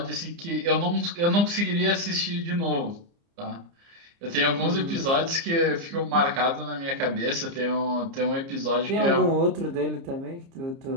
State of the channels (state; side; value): late; left; 30 ms